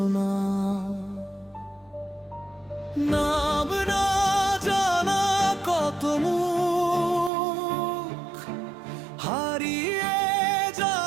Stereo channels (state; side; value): drops out; left; at 7.3 s